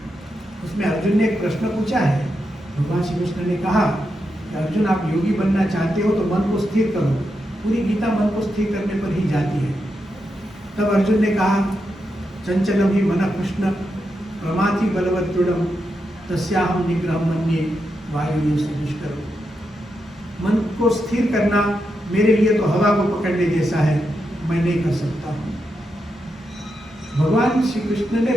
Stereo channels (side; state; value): both; normal; correlation 0.85